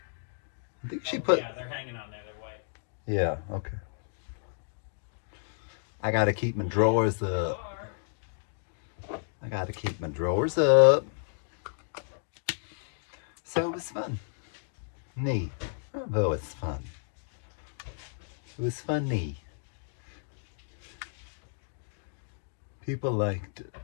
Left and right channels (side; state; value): right; silent; digital silence